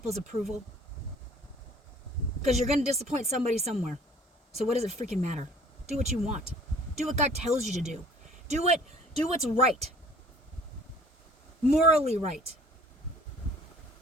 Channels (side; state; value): both; normal; correlation 0.53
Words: approval. Because you're going to disappoint somebody somewhere. So what does it freaking matter? Do what you want. Do what God tells you to do. Do what's right. morally right.